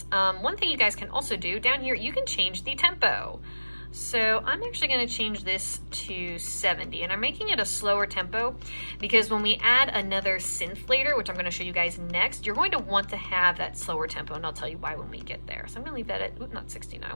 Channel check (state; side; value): inverted; both; correlation -1.00